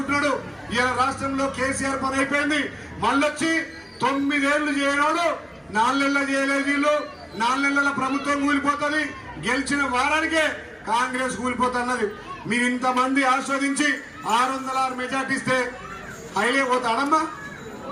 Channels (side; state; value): both; identical; correlation 1.00